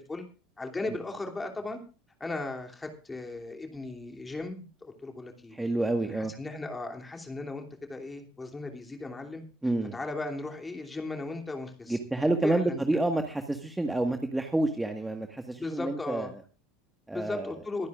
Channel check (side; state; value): both; normal; correlation 0.86